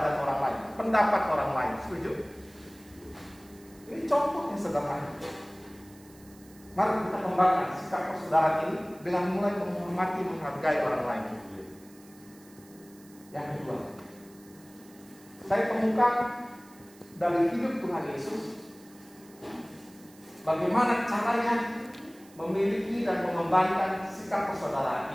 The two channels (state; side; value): noise; right; hiss, 25 dB below the sound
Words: orang lain, pendapat orang lain. Setuju? Ini contoh yang sederhana. Mari kita kembangkan sikap persaudaraan ini dengan mulai menghormati, menghargai orang lain. Yang kedua, saya temukan dari hidup Tuhan Yesus bagaimana caranya memiliki dan mengembangkan sikap